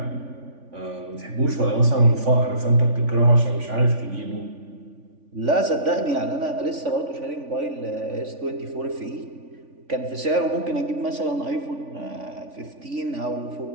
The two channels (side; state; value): left; late; 3.5 ms